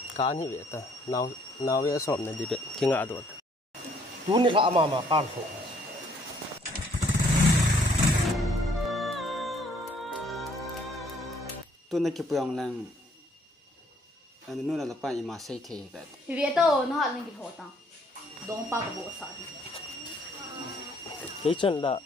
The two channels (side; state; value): both; normal; correlation 0.63